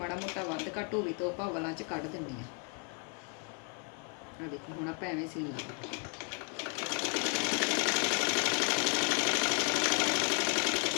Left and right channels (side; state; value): right; quieter; 37.1 dB